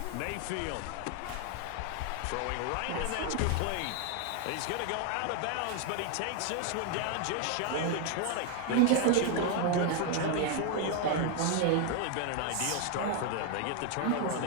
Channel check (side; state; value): both; different; correlation 0.01